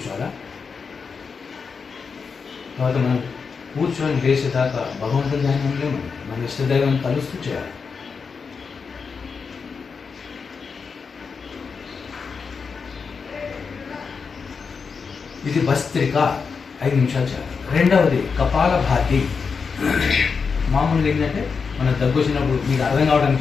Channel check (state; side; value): quieter; right; 5.4 dB